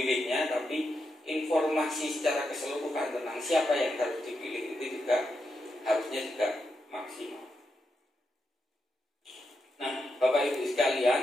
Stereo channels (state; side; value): normal; both; correlation 0.85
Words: tapi informasi secara keseluruhan tentang siapa yang harus dipilih itu juga harusnya juga maksimal. Nah, Bapak Ibu